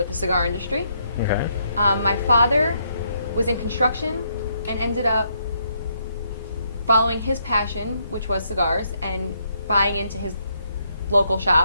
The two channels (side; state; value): both; inverted; correlation -0.74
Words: the cigar industry. Okay. My father was in construction and ended up following his passion, which was cigars, and buying into his local